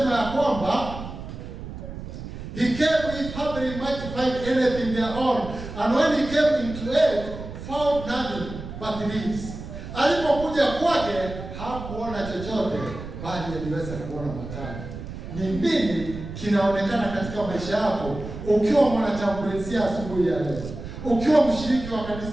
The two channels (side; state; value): right; noise; rumble, 10 dB below the sound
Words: ya kwamba he came if haply he might find anything thereon, and when he came into it, found nothing but leaves. Alipokuja kwake hakuona chochote, bali aliweza kuona matawi. Ni nini kinaonekana katika maisha yako ukiwa mwanachamburizia asubuhi ya leo, ukiwa mshiriki wa